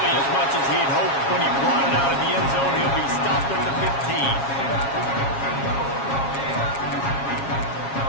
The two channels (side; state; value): right; late; 7.3 ms